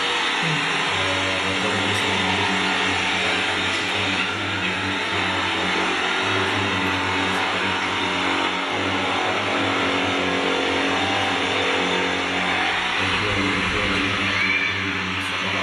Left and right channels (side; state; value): both; identical; correlation 1.00